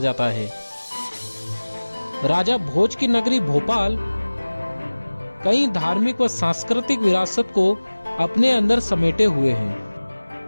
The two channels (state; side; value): inverted; both; correlation -1.00